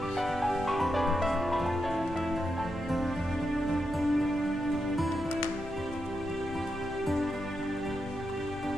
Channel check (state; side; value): normal; both; correlation 0.85